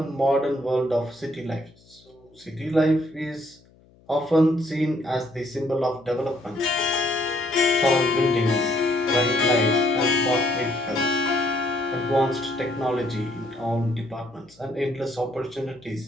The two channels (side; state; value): left; noise; hum, 29 dB below the sound